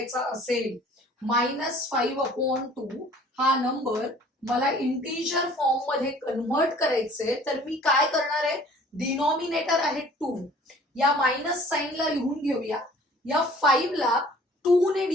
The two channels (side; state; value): both; normal; correlation 0.52